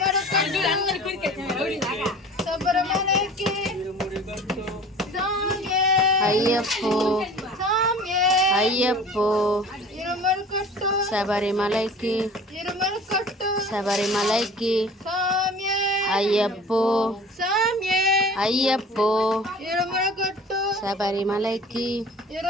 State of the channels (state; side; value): normal; both; correlation 0.43